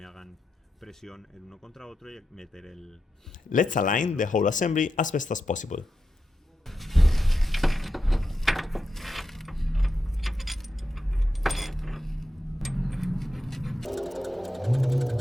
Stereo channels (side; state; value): both; normal; correlation 0.88